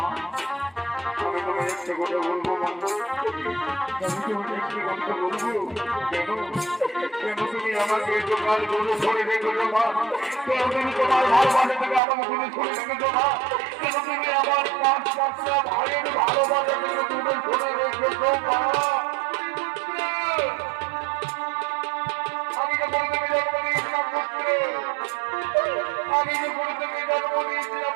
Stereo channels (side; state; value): left; drops out; at 12.0 s